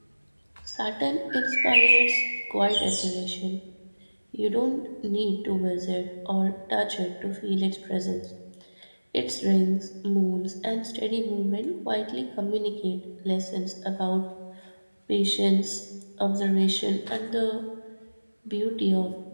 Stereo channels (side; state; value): both; inverted; correlation -1.00